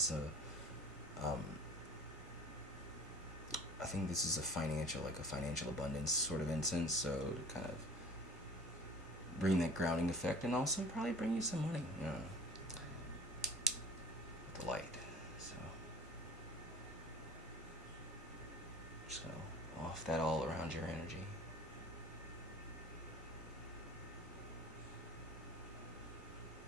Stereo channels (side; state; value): both; normal; correlation 0.44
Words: I think this is a financial abundance sort of incense, so to kind of bring that grounding effect, and also probably bring you some money, the light. So just gonna off that all around your energy.